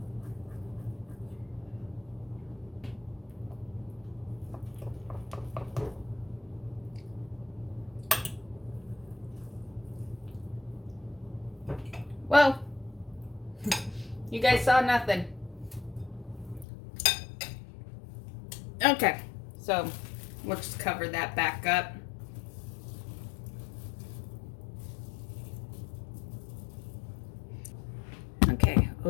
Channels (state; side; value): drops out; right; at 16.7 s